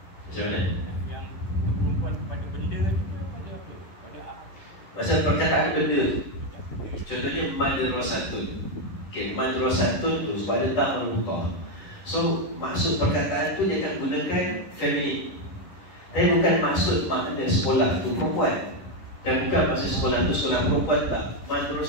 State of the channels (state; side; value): late; right; 11 ms